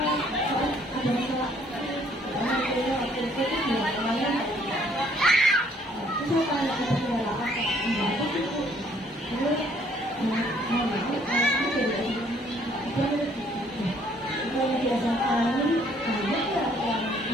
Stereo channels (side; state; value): both; normal; correlation 0.63